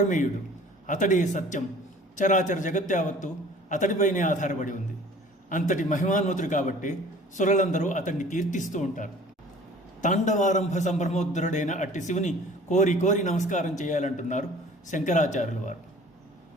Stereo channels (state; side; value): normal; both; correlation 0.48